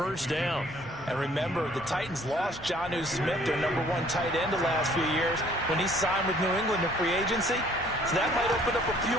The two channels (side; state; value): both; normal; correlation 0.58